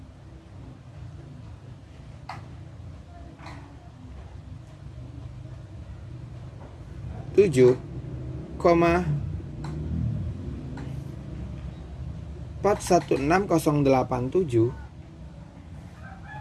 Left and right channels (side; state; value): both; identical; correlation 1.00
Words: tujuh koma 416087